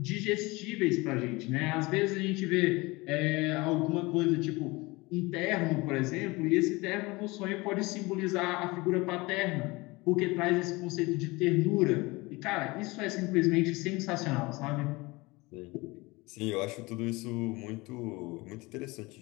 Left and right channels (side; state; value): right; quieter; 23.3 dB